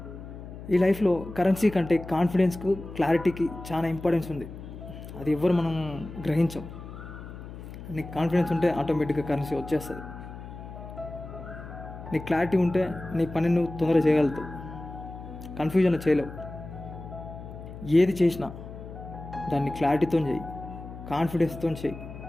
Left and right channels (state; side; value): noise; left; hum, 12 dB below the sound